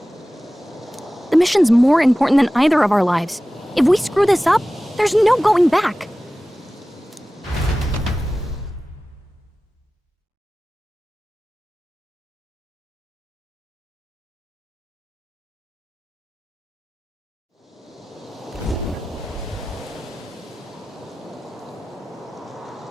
The mission's more important than either of our lives. If we screw this up, there's no going back.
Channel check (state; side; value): normal; both; correlation 0.96